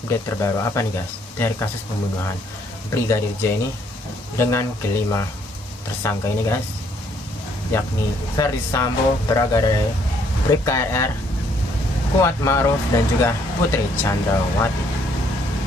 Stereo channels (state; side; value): normal; both; correlation 0.67